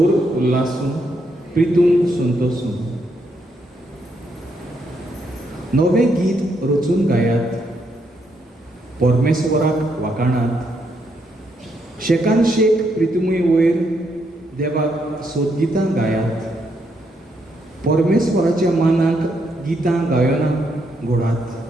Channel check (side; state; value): both; normal; correlation 0.77